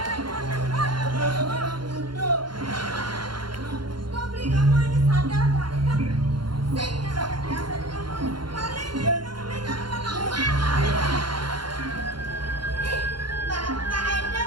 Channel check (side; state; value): left; late; 0.72 ms